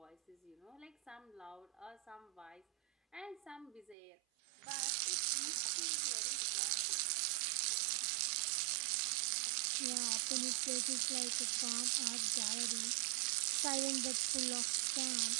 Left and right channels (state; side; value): drops out; left; at 4.0 s